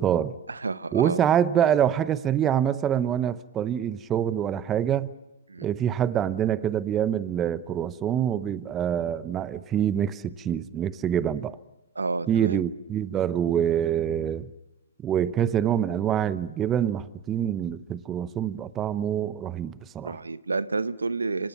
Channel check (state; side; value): quieter; left; 8.9 dB